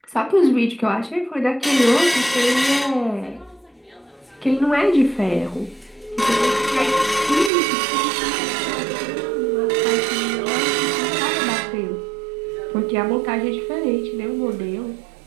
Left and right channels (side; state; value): left; drops out; at 7.5 s